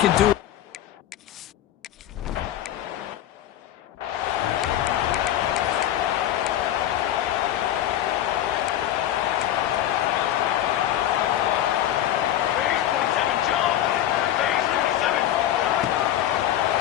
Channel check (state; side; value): quieter; right; 12.0 dB